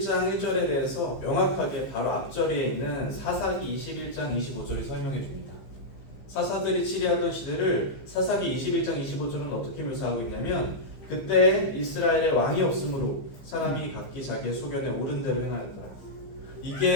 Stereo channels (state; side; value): late; right; 15 ms